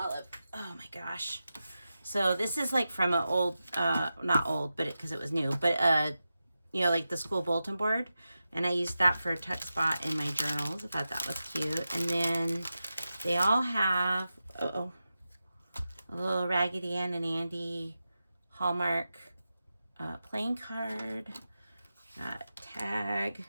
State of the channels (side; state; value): both; inverted; correlation -0.92